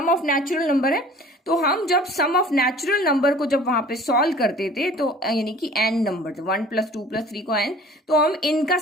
ऑफ नेचुरल नंबर है। तो हम जब सम ऑफ नेचुरल नंबर को जब वहां पे सॉल्व करते थे, तो यानी कि एन नंबर थे, 1 + 2 + 3 को एन, तो हम इनका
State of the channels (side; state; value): both; normal; correlation 0.47